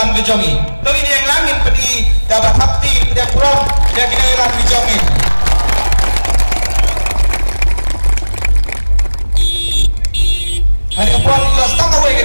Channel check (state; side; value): inverted; both; correlation -1.00